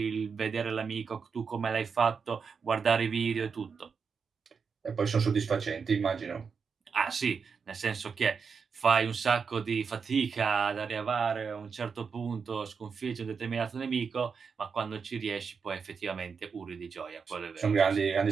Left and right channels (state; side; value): quieter; left; 5.7 dB